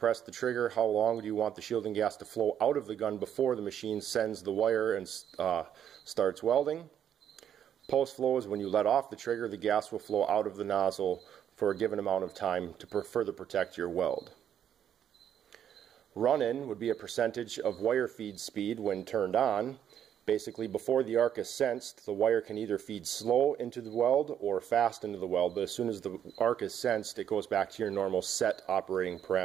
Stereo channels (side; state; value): left; quieter; 9.5 dB